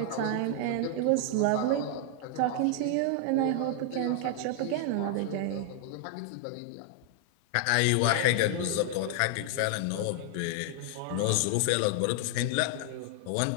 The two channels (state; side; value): different; both; correlation 0.00